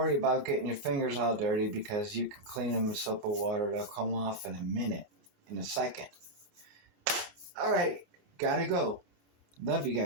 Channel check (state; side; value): late; left; 29 ms